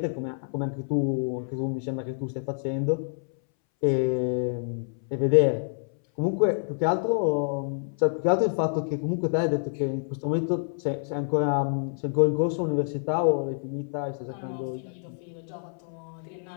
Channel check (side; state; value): right; silent; 60 dB below the other